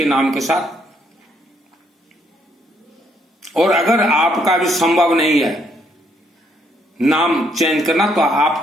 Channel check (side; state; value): both; normal; correlation 0.71